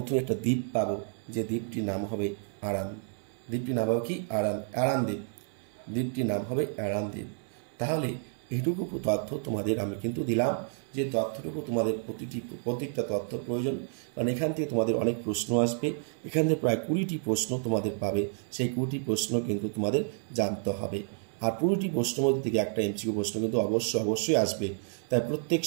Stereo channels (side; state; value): left; silent; 57 dB below the other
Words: একটা দ্বীপ পাবো, যে দ্বীপটির নাম হবে আরান। দ্বীপটির নাম হবে কি? আরান দ্বীপ। দ্বীপটির নাম হবে আরান দ্বীপ। তাহলে এইটুকু তথ্য তোমাদের আমি কিন্তু দিলাম, যে তথ্যটুকু তোমাদের প্রত্যেকটা তথ্য প্রয়োজন, কারণ এখান থেকে তোমাদের অনেক প্রশ্ন আসবে। এখান থেকে প্রায় 20টি প্রশ্ন তোমাদের পাবে, সেই 20টি প্রশ্ন কিন্তু তোমাদের জানতে হবে। আর 20টি প্রশ্নের মধ্যে থেকে একটা এমসিকিউ প্রশ্ন কিন্তু অবশ্যই আসবে। তাই প্রত্যেক